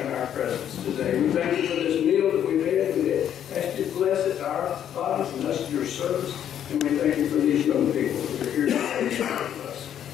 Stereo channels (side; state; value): right; quieter; 9.9 dB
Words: in our presence today. We thank you for this meal that we've had. We ask you to bless it to our bodies and us to your service. And we thank you for these young people who are here today to talk to us